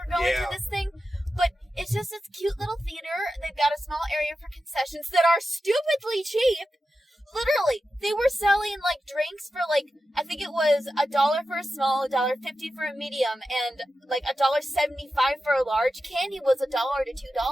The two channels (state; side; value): normal; both; correlation 0.92